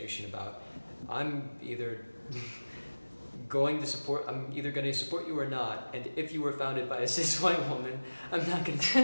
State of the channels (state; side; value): inverted; both; correlation -1.00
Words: about, I'm either going to support you or not, and if you were founded by a cis white woman, I'm not going to